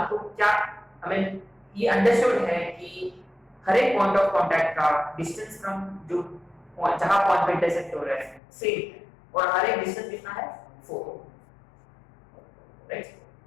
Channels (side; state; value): right; drops out; at 8.4 s